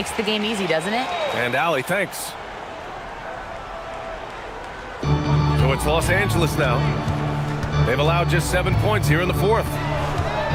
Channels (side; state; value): both; identical; correlation 1.00